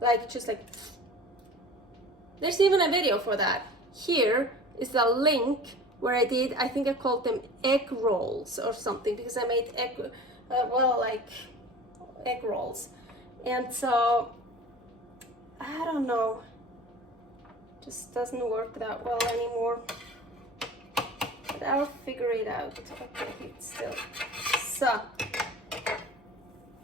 like just like. There's even a video for that. Here is the link where I did, I think I called them egg rolls or something, because I made egg, like egg rolls. And so, I don't know, just doesn't work that well anymore. But I'll figure it out. Okay, it's still so.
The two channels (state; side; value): normal; both; correlation 0.40